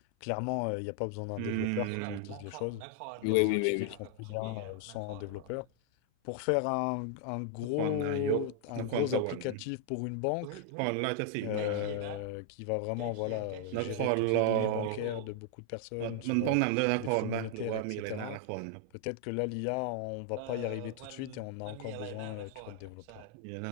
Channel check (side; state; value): both; different; correlation 0.00